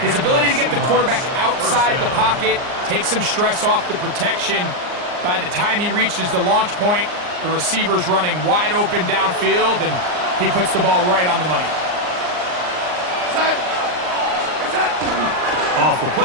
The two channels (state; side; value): late; left; 39 ms